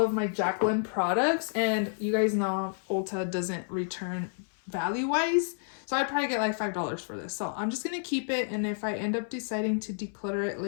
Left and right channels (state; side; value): silent; right; 58 dB below the other